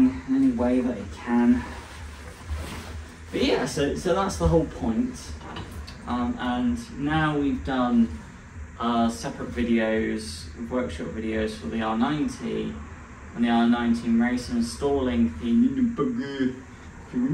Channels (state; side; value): identical; both; correlation 1.00